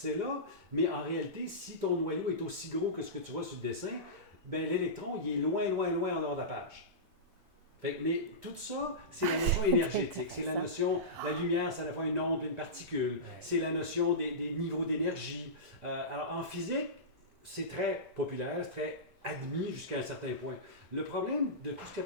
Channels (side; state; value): right; late; 1.9 ms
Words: là, mais en réalité, si ton noyau est aussi gros que ce que tu vois sur le dessin, ben, l'électron, il est loin, loin, loin en dehors de la page. Mais tout ça, c'est la notion énergétique. C'est la notion, la lumière, c'est à la fois une onde et une particule. C'est la notion des niveaux d'énergie. Alors, en physique, c'est très populaire, c'est très admis jusqu'à un certain point. Le problème de tout ce qu'on